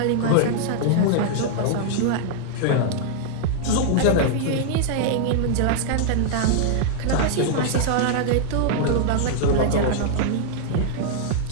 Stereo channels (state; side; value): different; both; correlation -0.01